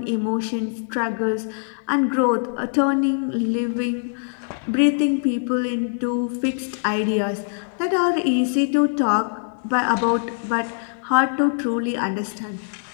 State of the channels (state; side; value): silent; right; digital silence